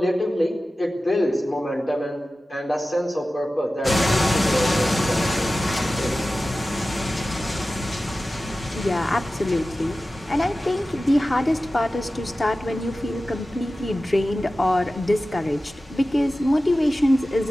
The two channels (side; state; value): both; normal; correlation 0.95